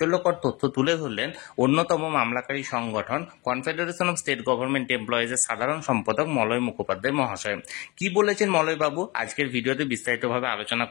তথ্য তুলে ধরলেন অন্যতম মামলাকারী সংগঠন কনফেডারেশন অফ স্টেট গভর্নমেন্ট এমপ্লয়িজের সাধারণ সম্পাদক মলয় মুখোপাধ্যায় মহাশয়। কি বলেছেন মলয় বাবু আজকের ভিডিওতে বিস্তারিতভাবে আলোচনা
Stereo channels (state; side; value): quieter; right; 24.7 dB